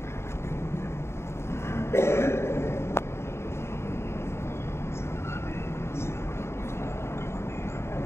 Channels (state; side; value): late; right; 0.13 ms